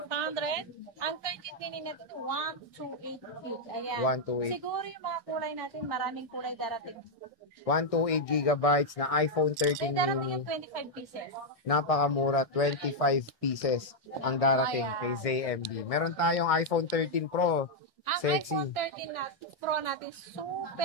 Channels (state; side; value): late; right; 1.6 ms